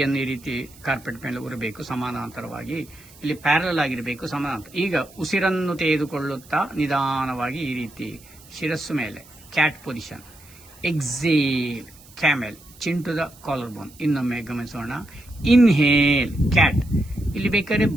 ಈ ರೀತಿ ಕಾರ್ಪೆಟ್ ಮೇಲೆ ಉರಬೇಕು ಸಮಾನಾಂತರವಾಗಿ. ಇಲ್ಲಿ ಪ್ಯಾರಲ್ ಆಗಿರಬೇಕು ಸಮಾನಾಂತರ. ಈಗ ಉಸಿರನ್ನು ತೆಗೆದುಕೊಳ್ಳುತ್ತಾ ನಿಧಾನವಾಗಿ ಈ ರೀತಿ ಶಿರಸ್ಸು ಮೇಲೆ cat position. Exhale camel, chin to the collar bone. ಇನ್ನೊಮ್ಮೆ ಗಮನಿಸೋಣ. Inhale cat. ಇಲ್ಲಿ ಬೇಕಾದ್ರೆ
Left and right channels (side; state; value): right; noise; hiss, 23 dB below the sound